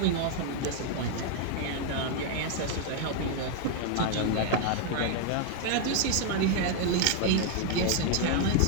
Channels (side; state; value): both; different; correlation 0.00